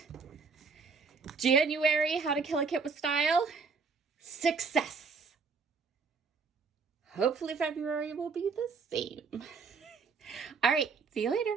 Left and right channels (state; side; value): quieter; left; 5.0 dB